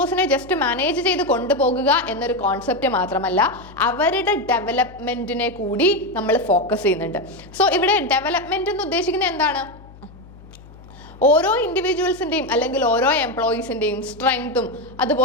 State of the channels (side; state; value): left; noise; hum, 20 dB below the sound